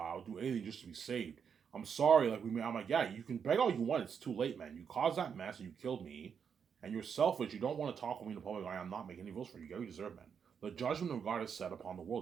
do anything just to be saved. I'm sorry. I'm like, yeah, you can beg all you want. It's too late, man. You caused that mess and you killed me. And you're selfish. You don't want to talk with me in the public eye. I'm not making any rules for you. You get what you deserve, man. The judgment of God is set upon the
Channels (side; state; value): left; quieter; 7.0 dB